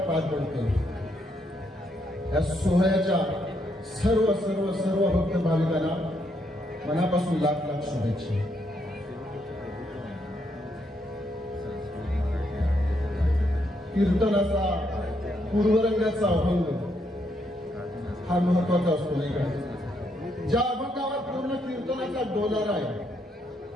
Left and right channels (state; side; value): normal; both; correlation 0.76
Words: पार पडतो। या सोहळ्याच्या सर्व सर्व सर्व भक्त भाविकांना मनापासून लाख लाख शुभेच्छा। कीर्तनाचा पूर्वरंगाचा अभंग हा महत्वाचा असतो नाही का? ज्या अभंगावर पूर्ण कीर्तनाचा डोलारा आहे